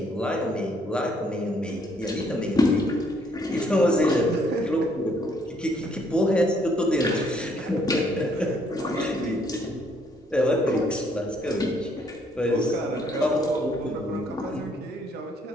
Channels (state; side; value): normal; both; correlation 0.67